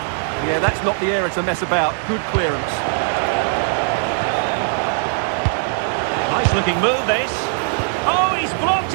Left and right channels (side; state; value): left; silent; 61 dB below the other